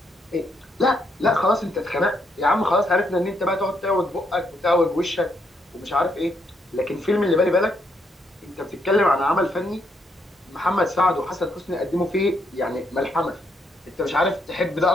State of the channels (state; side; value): normal; both; correlation 0.75